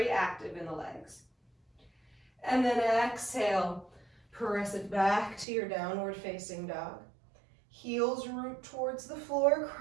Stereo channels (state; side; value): drops out; left; at 5.5 s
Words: active in the legs. And then exhale, press it back to your downward facing dog. Heels root towards the floor,